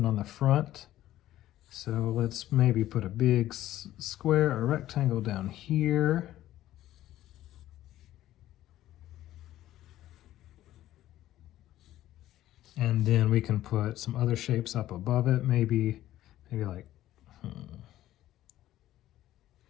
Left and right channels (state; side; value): quieter; right; 13.9 dB